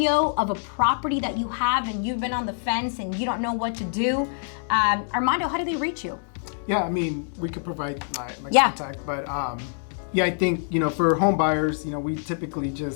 of a property that you have and you've been on the fence and you don't know what to do, Armando, how do they reach you? Yeah, we could provide my contact, but I think, for home buyers, we typically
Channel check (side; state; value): right; silent; digital silence